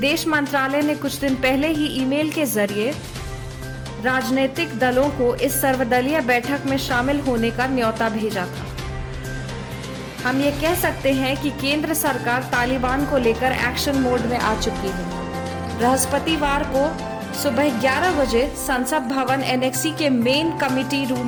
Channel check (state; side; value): identical; both; correlation 1.00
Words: मंत्रालय ने कुछ दिन पहले ही ईमेल के जरिए राजनीतिक दलों को इस सर्वदलीय बैठक में शामिल होने का न्योता भेजा था। हम ये कह सकते हैं कि केंद्र सरकार तालिबान को लेकर एक्शन मोड में आ चुकी है। बृहस्पतिवार को सुबह 11 बजे संसद भवन एनेक्सी के मेन कमिटी